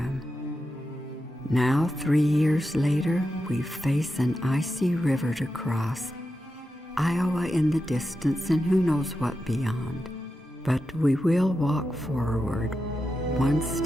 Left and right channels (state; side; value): normal; both; correlation 0.89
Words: Now, 3 years later, we face an icy river to cross, Iowa in the distance, and who knows what beyond. But we will walk forward, one